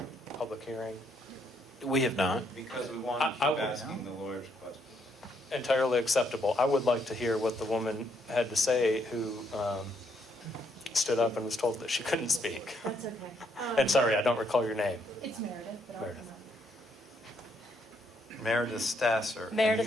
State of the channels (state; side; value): normal; both; correlation 0.73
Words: public hearing. We have not. Because we want to keep asking the lawyer's question. Entirely acceptable. I would like to hear what the woman had to say who stood up and was told that she couldn't speak. That's okay. And sorry, I don't recall your name. It's Meredith, but Meredith. Meredith Stasser.